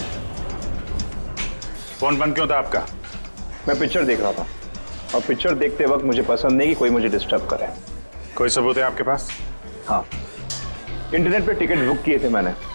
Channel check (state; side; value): inverted; both; correlation -1.00